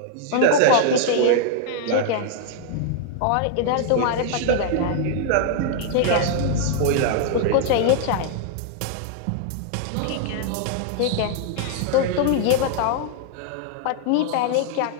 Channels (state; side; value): different; both; correlation -0.01